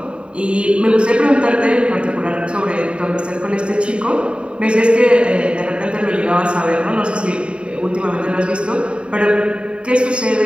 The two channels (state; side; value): late; left; 0.054 ms